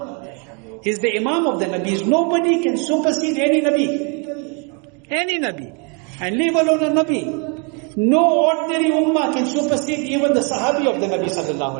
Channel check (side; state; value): left; quieter; 35.4 dB